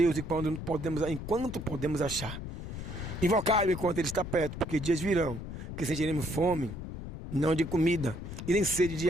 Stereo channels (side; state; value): left; noise; rumble, 8 dB below the sound